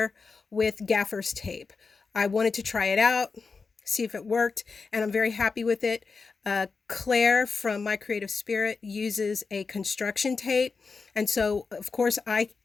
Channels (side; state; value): right; quieter; 4.7 dB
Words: with gaffer's tape. I wanted to try it out, see if it worked, and I'm very happy with it. Claire from My Creative Spirit uses a construction tape, and so of course I